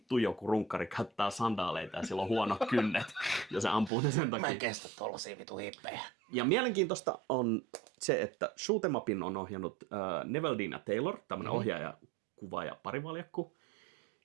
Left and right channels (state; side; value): drops out; left; at 3.9 s